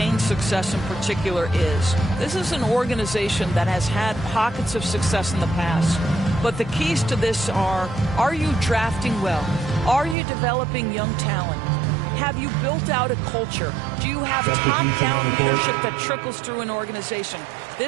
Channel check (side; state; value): left; drops out; at 10.2 s